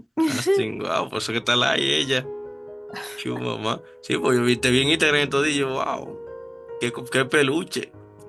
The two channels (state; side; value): identical; both; correlation 1.00